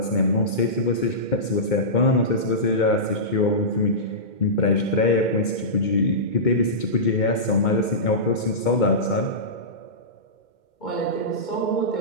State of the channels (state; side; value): late; right; 2.1 ms